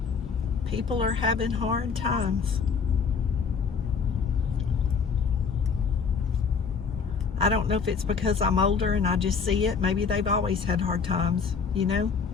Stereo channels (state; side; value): quieter; right; 5.7 dB